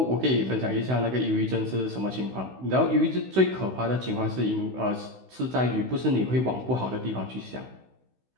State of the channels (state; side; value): late; left; 16 ms